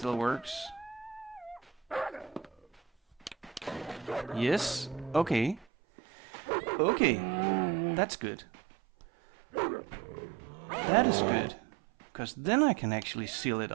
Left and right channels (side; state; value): left; drops out; at 5.7 s